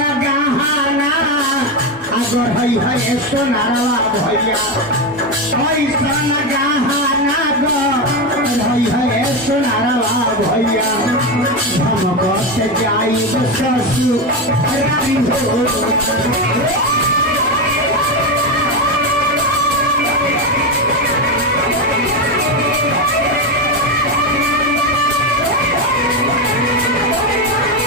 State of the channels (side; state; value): both; normal; correlation 0.13